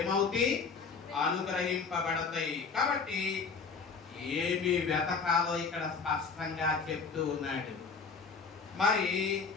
అనుగ్రహింపబడతాయి. కాబట్టి ఏమి వెతకాలో ఇక్కడ స్పష్టంగా చెప్తూ ఉన్నాడు.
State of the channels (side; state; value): right; quieter; 5.1 dB